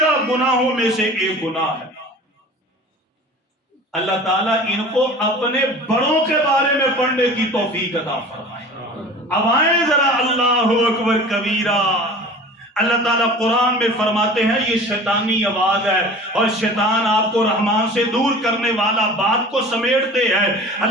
گناہوں میں سے ایک گناہ ہے۔ اللہ تعالیٰ ان کو اپنے بڑوں کے بارے میں پڑھنے کی توفیق عطا فرمائے۔ اب آئیں ذرا، اللہ اکبر کبیرہ۔ اللہ تعالیٰ قرآن میں فرماتے ہیں یہ شیطانی آواز ہے، اور شیطان آپ کو رحمان سے دور کرنے والا بات کو سمیٹتے ہیں۔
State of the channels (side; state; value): both; normal; correlation 0.41